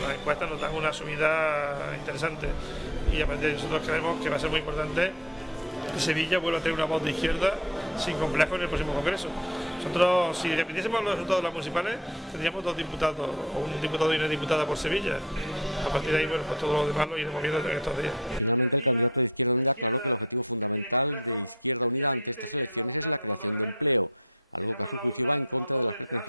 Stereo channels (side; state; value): both; normal; correlation 0.37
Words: encuestas nos dan una subida interesante y a partir de ahí nosotros creemos que va a ser muy importante que Sevilla vuelva a tener una voz de izquierda sin complejo en el próximo Congreso. Nosotros, si dependiésemos de los resultados de las municipales, tendríamos 2 diputados, o un diputado y una diputada por Sevilla. A partir de ahí, bueno, pues todo lo demás lo iremos viendo en estos días. La izquierda, que tiene complejo, el día 20 tiene la urna de voto rebelde. Tenemos la urna de voto de